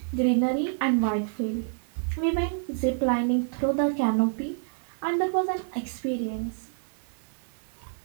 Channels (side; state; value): left; silent; digital silence